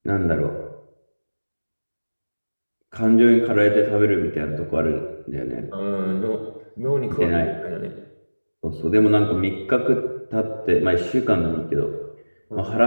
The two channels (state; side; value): inverted; both; correlation -1.00